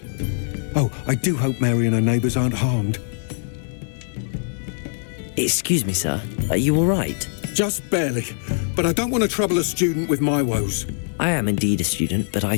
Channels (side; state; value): right; silent; 58 dB below the other